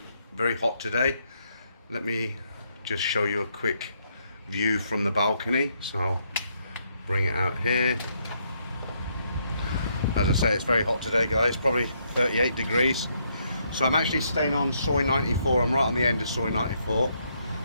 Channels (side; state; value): both; inverted; correlation -0.74